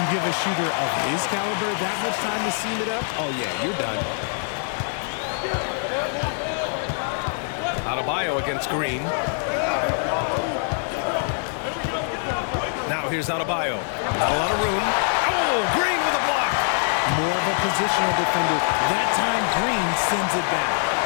give a shooter of his caliber that much time to seam it up? Oh, yeah, you're done. Adebayo against Green. Now here's Adebayo. Not a lot of room. Oh, Green with a block. More of a positional defender. That time, Green sends it back.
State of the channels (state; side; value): silent; right; 63 dB below the other